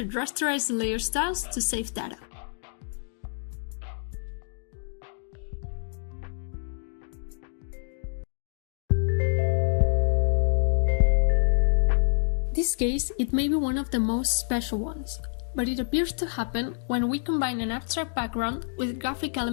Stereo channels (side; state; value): right; silent; digital silence